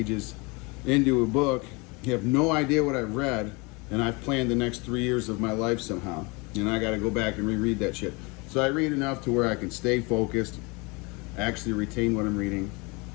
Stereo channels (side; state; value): right; quieter; 28.1 dB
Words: into a book. You have no idea what I've read, and I've planned the next 3 years of my life somehow, and I got to go back and reread that shit. So I read enough to where I can stay focused, actually retain what I'm reading,